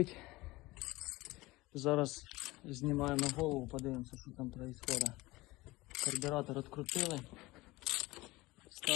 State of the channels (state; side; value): quieter; right; 20.5 dB